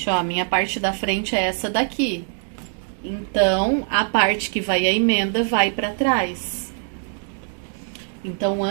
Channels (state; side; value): silent; left; digital silence